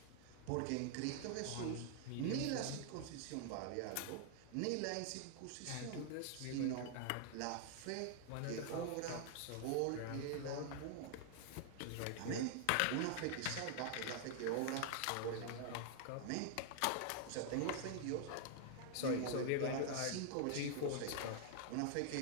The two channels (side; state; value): both; different; correlation 0.00